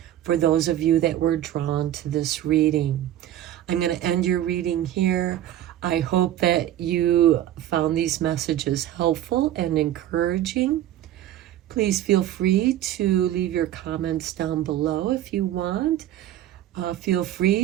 for those of you that were drawn to this reading. I'm going to end your reading here. I hope that you found these messages helpful and encouraging. Please feel free to leave your comments down below if you want. Feel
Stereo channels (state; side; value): quieter; left; 12.4 dB